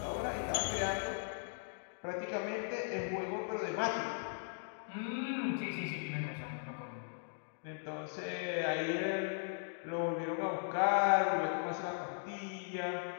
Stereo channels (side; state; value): right; silent; digital silence